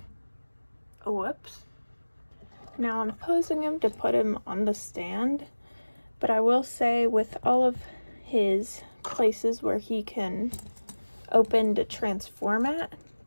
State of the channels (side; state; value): both; inverted; correlation -1.00